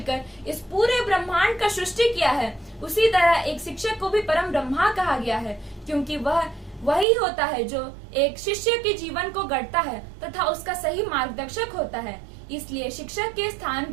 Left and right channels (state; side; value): drops out; left; at 7.1 s